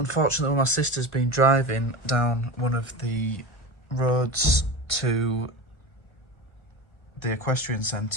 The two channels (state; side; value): late; right; 1.5 ms